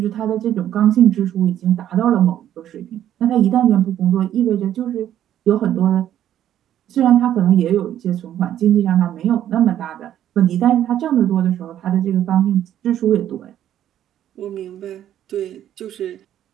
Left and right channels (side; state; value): left; quieter; 11.2 dB